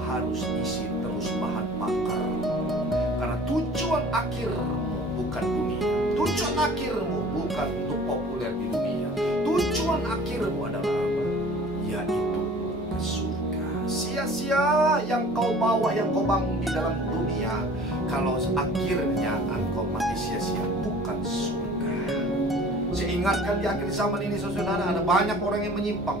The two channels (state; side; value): normal; both; correlation 0.47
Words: harus isi terus bahan bakar, karena tujuan akhirmu bukan dunia, tujuan akhirmu bukan untuk populer di dunia, tujuan akhirmu adalah apa? Yaitu ke surga. Sia-sia yang kau bawa, yang kau bangun di dalam dunia, kalau akhirnya engkau mati sia-sia, bukan surga. Saya ingatkan di akhir zaman ini saudara, ada banyak orang yang